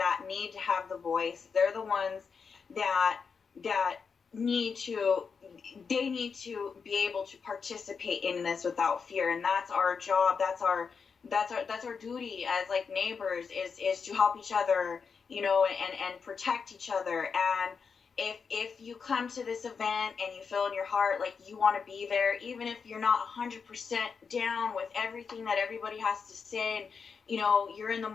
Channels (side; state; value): right; quieter; 5.7 dB